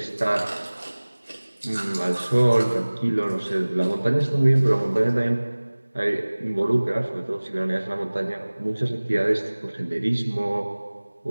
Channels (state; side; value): inverted; both; correlation -1.00